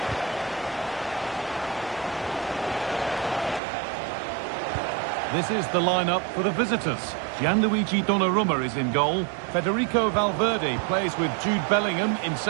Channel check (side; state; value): left; drops out; at 3.6 s